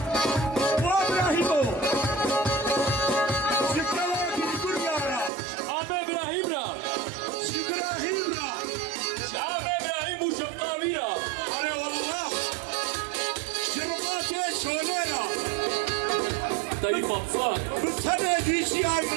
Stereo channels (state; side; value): drops out; left; at 5.3 s